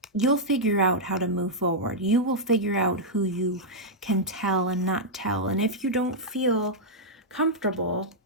You'll figure out how to move forward. You will figure out who you can tell and not tell. And if you don't feel comfortable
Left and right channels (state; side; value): normal; both; correlation -0.07